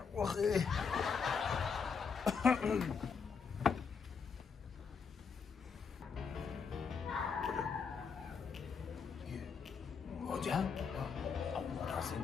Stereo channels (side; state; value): right; quieter; 5.9 dB